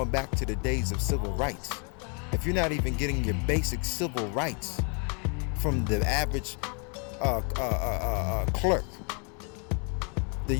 back to the days of civil rights. If you're not even getting your basic civil rights from the average clerk, then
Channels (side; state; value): right; quieter; 36.5 dB